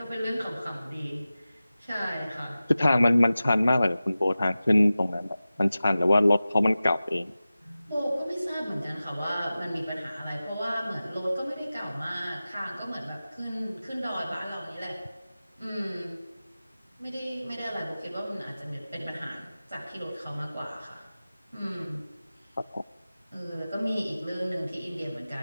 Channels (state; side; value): inverted; both; correlation -0.96